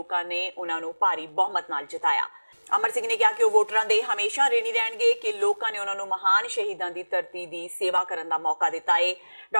ਨੇ ਉਹਨਾਂ ਨੂੰ ਭਾਰੀ ਬਹੁਮਤ ਨਾਲ ਜਿਤਾਇਆ। ਅਮਰ ਸਿੰਘ ਨੇ ਕਿਹਾ ਕਿ ਉਹ ਵੋਟਰਾਂ ਦੇ ਹਮੇਸ਼ਾ ਰਿਣੀ ਰਹਿਣਗੇ ਕਿ ਲੋਕਾਂ ਨੇ ਉਹਨਾਂ ਨੂੰ ਮਹਾਨ ਸ਼ਹੀਦਾਂ ਦੀ ਧਰਤੀ ਦੀ ਸੇਵਾ ਕਰਨ ਦਾ ਮੌਕਾ ਦਿੱਤਾ ਹੈ।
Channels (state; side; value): inverted; both; correlation -1.00